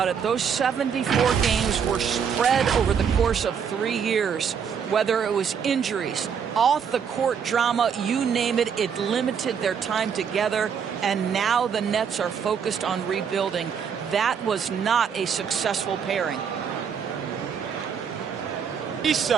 it. Those 74 games were spread over the course of 3 years. Whether it was injuries, off-the-court drama, you name it, it limited their time together. And now the Nets are focused on rebuilding. That was not a successful pairing. 3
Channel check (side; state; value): left; quieter; 7.2 dB